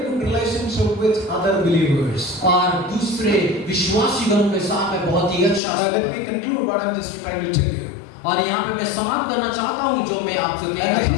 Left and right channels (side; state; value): right; drops out; at 5.6 s